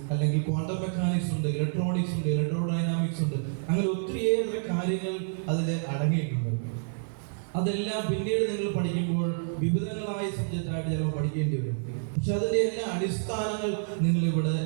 അല്ലെങ്കിൽ ക്വാണ്ടം മെക്കാനിക്സ് ഉണ്ട്, ഇലക്ട്രോണിക്സ് ഉണ്ട്, ഇലക്ട്രോഡൈനാമിക്സ് ഉണ്ട്. അങ്ങനെ ഒത്തിരിയേറെ കാര്യങ്ങൾ അതിൽ അടങ്ങിയിട്ടുണ്ട്. അതെല്ലാം പിന്നീട് നിങ്ങൾ പഠിക്കുമ്പോൾ വിവിധങ്ങളായ സബ്ജക്റ്റായിട്ട് ചിലപ്പോൾ പഠിക്കേണ്ടി വരും. പക്ഷെ അതിൻ്റെ എല്ലാ അടിസ്ഥാനങ്ങൾ നിങ്ങൾ ഇവിടെ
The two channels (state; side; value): silent; left; digital silence